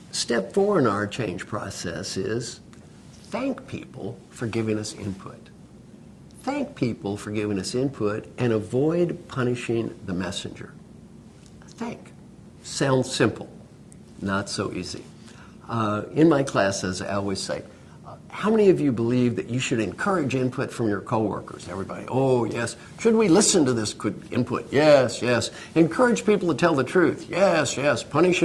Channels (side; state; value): both; identical; correlation 1.00